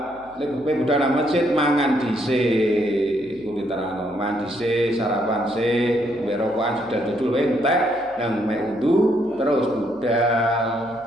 Nek budal nang masjid mangan dhisik, kuwi terangno, mangan dhisik, sarapan sik, mbek rokokan sudah dudul entek nang mek wudu terus budal.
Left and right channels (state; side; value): noise; left; hum, 27 dB below the sound